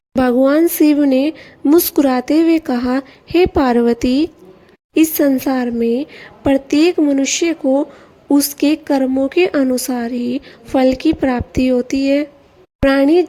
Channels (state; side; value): identical; both; correlation 1.00